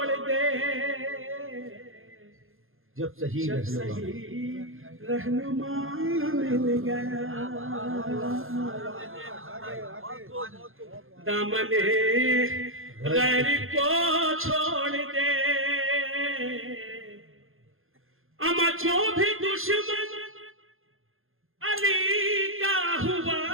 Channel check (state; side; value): late; left; 0.60 ms